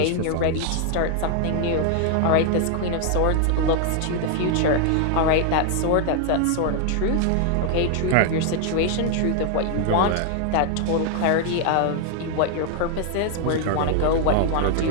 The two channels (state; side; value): different; both; correlation 0.00